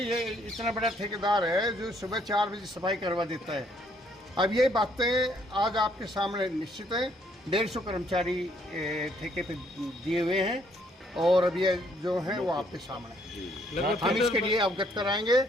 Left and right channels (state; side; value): normal; both; correlation 0.67